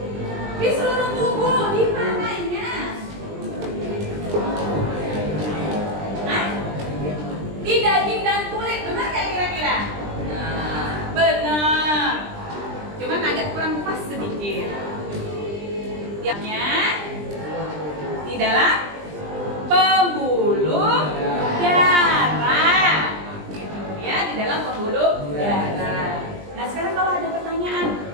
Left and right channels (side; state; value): left; late; 20 ms